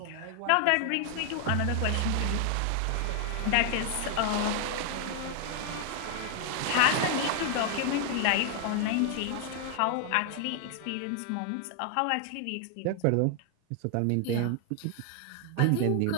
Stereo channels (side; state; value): both; different; correlation 0.00